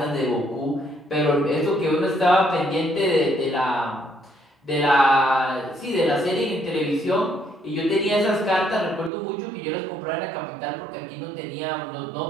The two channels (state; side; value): drops out; left; at 9.1 s